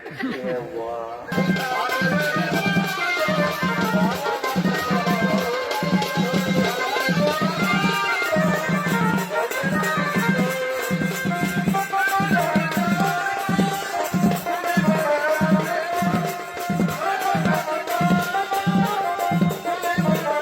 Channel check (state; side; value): identical; both; correlation 1.00